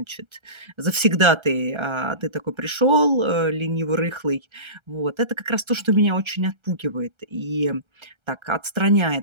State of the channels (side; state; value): left; late; 1.3 ms